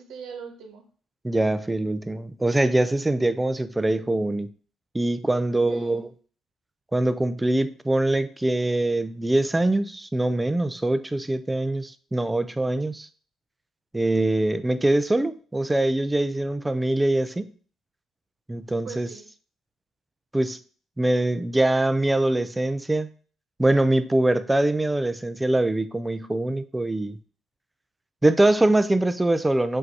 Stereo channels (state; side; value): normal; both; correlation 0.98